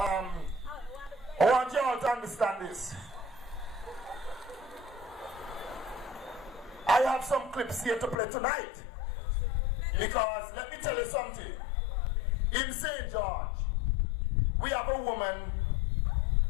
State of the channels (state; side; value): drops out; right; at 8.2 s